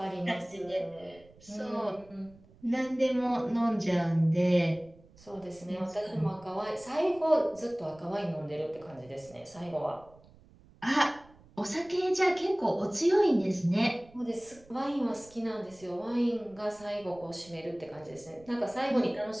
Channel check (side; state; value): right; noise; rumble, 26 dB below the sound